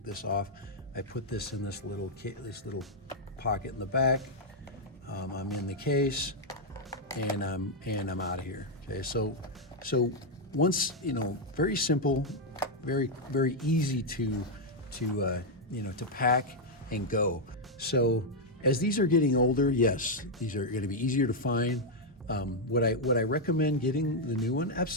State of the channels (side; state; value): both; normal; correlation -0.01